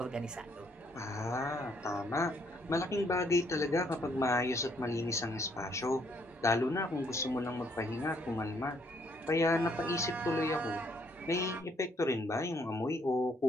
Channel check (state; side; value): normal; both; correlation 0.68